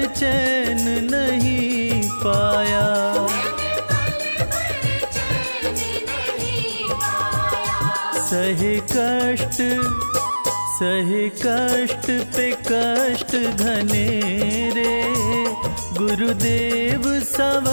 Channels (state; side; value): inverted; both; correlation -1.00